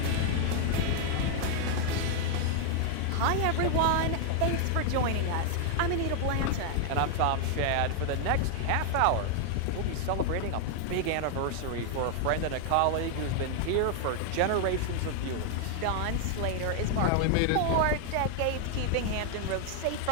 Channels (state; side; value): different; both; correlation 0.00